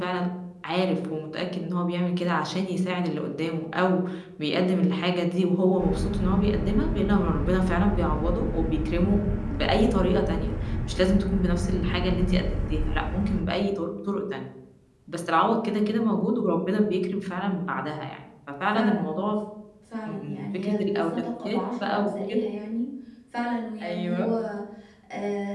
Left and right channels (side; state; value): both; identical; correlation 1.00